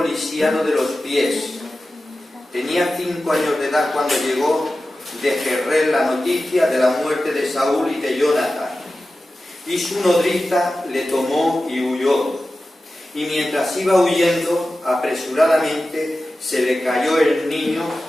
lisiado de los pies. Tenía 5 años de edad cuando llegó de Jezreel la noticia de la muerte de Saúl y de Jonatán. Y su nodriza le tomó y huyó. Y mientras iba huyendo, apresuradamente se le cayó el niño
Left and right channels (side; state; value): both; normal; correlation 0.94